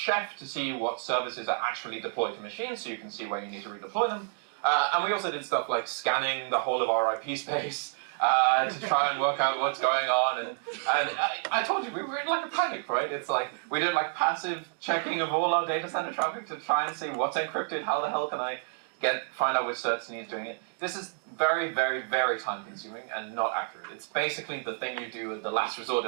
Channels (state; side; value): silent; left; 58 dB below the other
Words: to see what services are actually deployed to machines, so you can see where you need to redeploy them. And we also did stuff like scanning the whole of our IP space to try and work out what's going on. And I told you, we were in like a panic, right? It's like, we did like passive checking of all our data center traffic to try and see what's encrypted, how the hell can I find out which certs needs doing it. This is very, very, very time consuming and not accurate. It's basically the thing you do at the last resort